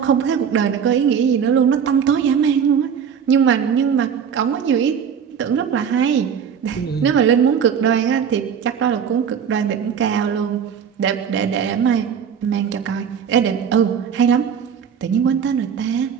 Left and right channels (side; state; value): left; quieter; 7.5 dB